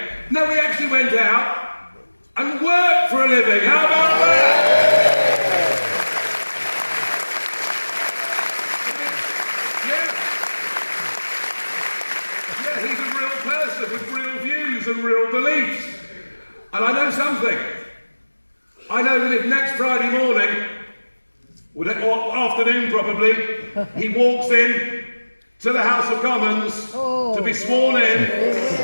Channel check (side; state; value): both; inverted; correlation -1.00